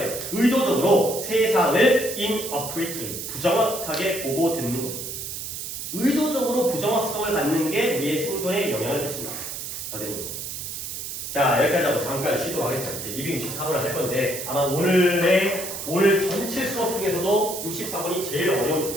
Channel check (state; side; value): noise; right; hiss, 7 dB below the sound